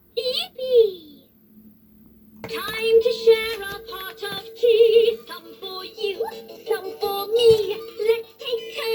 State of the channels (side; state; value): both; identical; correlation 1.00